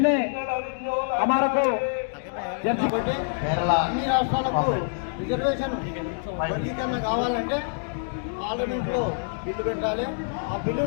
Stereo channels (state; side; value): silent; right; digital silence